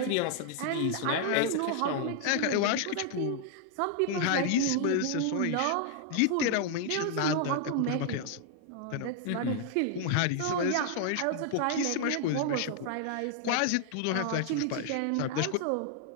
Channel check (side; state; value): both; different; correlation 0.00